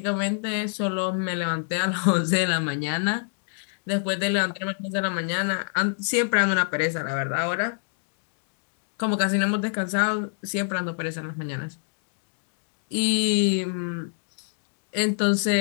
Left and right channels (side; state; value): right; silent; digital silence